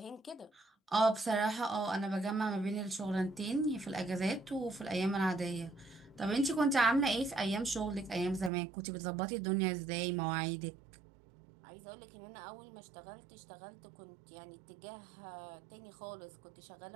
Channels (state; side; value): drops out; left; at 8.5 s